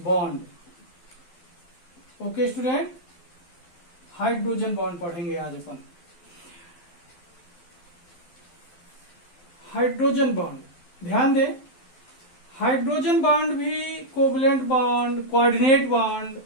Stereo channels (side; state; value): right; late; 12 ms